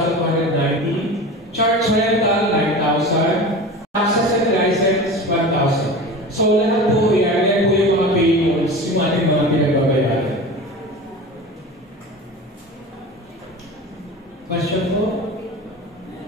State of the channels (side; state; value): both; normal; correlation 0.33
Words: Charge rental, 9,000. Taxes and license, 1,000. So, lahat po yan po yung mga payables, yung ating mga pinagbabayaran. Question po?